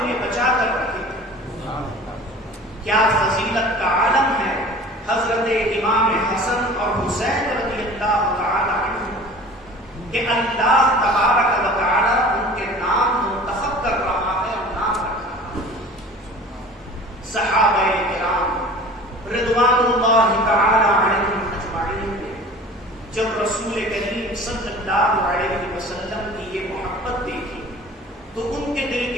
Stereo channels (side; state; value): both; normal; correlation 0.42